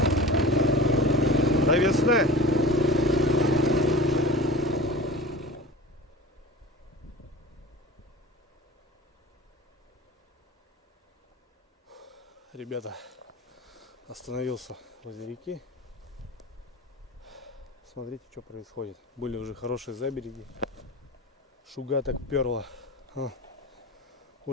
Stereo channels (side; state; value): both; normal; correlation 0.36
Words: До весны. Ребята, остановился возле реки. Смотрите, что происходит. Были уже хорошие забереги. Шуга так перла.